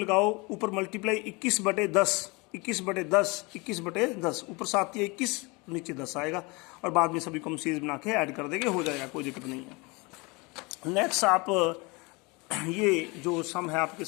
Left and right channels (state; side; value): quieter; right; 26.8 dB